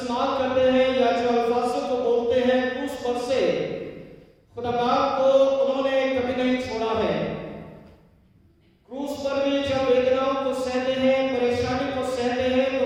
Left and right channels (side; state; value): both; identical; correlation 1.00